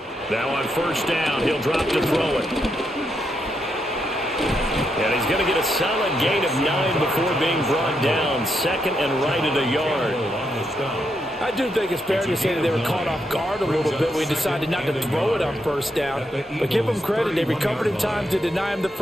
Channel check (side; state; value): both; normal; correlation 0.81